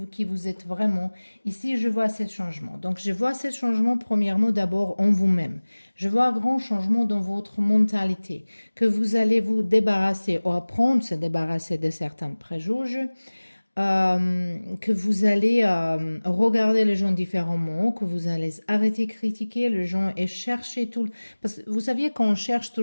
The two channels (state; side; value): inverted; both; correlation -1.00